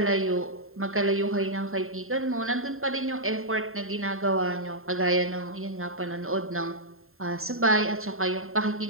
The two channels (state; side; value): late; left; 0.61 ms